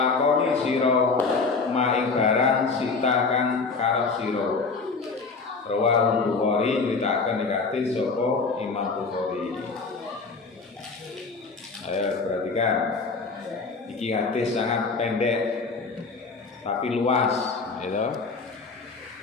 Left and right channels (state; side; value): quieter; right; 4.4 dB